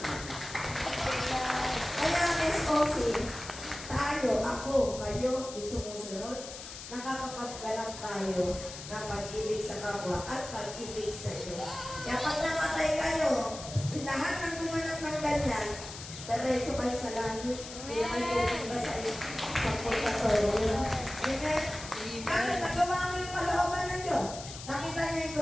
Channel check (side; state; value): left; noise; hiss, 11 dB below the sound